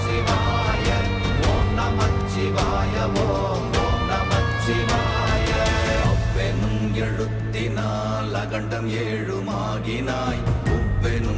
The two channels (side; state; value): both; identical; correlation 1.00